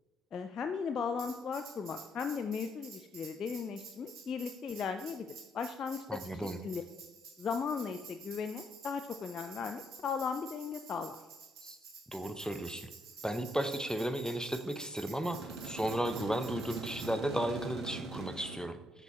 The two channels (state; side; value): normal; both; correlation 0.76